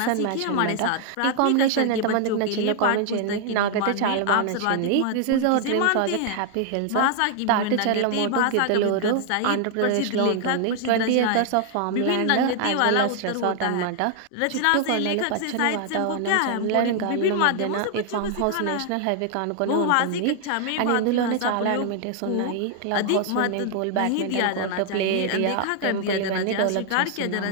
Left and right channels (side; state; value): both; different; correlation 0.00